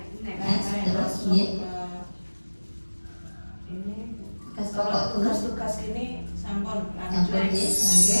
terus tugas ini sampun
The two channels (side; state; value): both; inverted; correlation -1.00